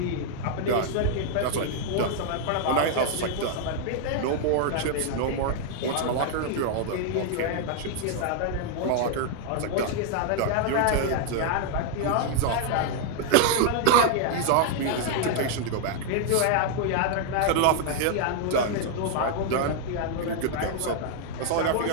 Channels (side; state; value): both; different; correlation 0.00